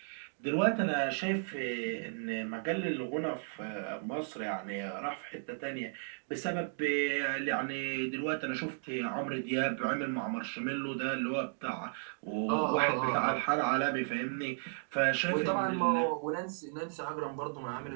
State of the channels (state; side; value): silent; left; digital silence